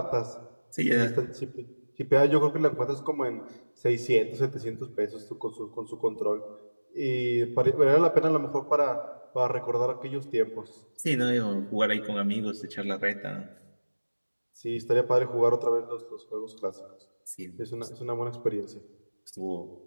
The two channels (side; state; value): both; inverted; correlation -1.00